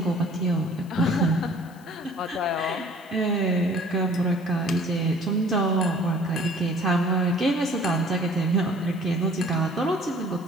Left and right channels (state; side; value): noise; left; hiss, 27 dB below the sound